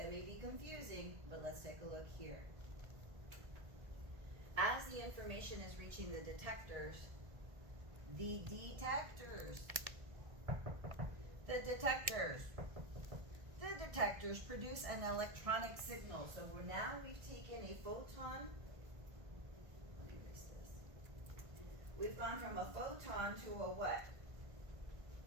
be confusing, but let's take a look here. As the information is reaching the detectors, the detectors produce an electronic signal. So we've taken a photon. Let me erase this. We've gone from a photon to a what?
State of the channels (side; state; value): left; late; 1.5 ms